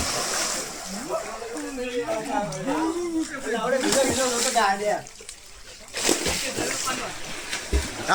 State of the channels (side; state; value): both; identical; correlation 1.00